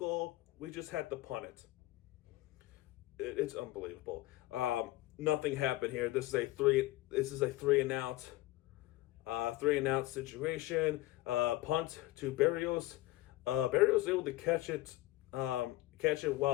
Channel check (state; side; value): quieter; right; 17.7 dB